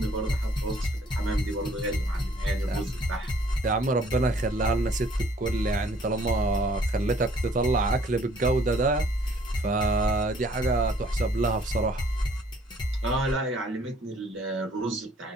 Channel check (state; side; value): normal; both; correlation 0.60